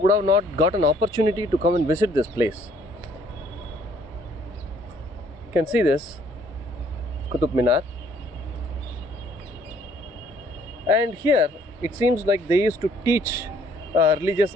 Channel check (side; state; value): both; normal; correlation 0.62